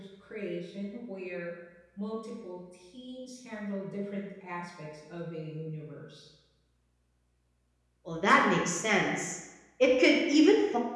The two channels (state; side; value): identical; both; correlation 1.00